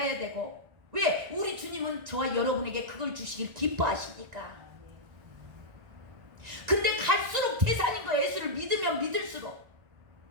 되고. 왜? 우리 주님은 저와 여러분에게 그걸 주시길 기뻐하시니까. 근데 갈수록 태산인 거예요. 예수를 믿으면 믿을수록.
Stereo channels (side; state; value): left; late; 1.9 ms